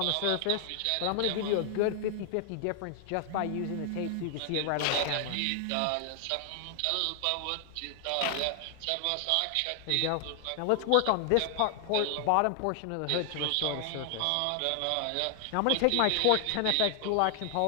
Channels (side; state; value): both; different; correlation 0.00